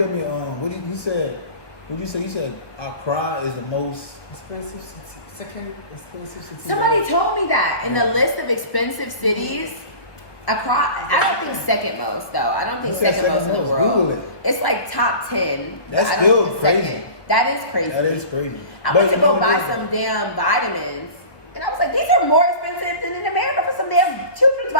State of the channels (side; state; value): right; late; 1.3 ms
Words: me, he said, what'd you say? He said Accra is the most Expensive city. Second expensive city. Somebody told me that in the list of expensive cities, Accra, I don't think second most though. I don't think You said second most in the most. world. Google it. It's like top 10. but That's I don't still think it's crazy. second. That is crazy. That is crazy. I But went to you know go what buy it is? some damn vitamins, and I was like, these are more expensive than in America for some damn children's